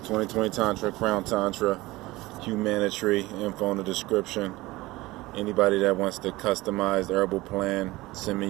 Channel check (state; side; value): quieter; left; 19.6 dB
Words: 2020 Tantra, Crown Tantra, Humanitary, info in the description. Anybody that wants to customize the herbal plan, send me